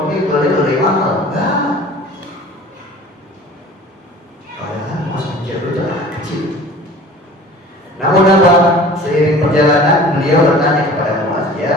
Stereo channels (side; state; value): both; normal; correlation 0.44